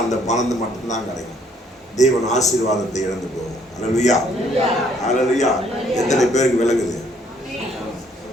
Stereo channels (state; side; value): normal; both; correlation 0.64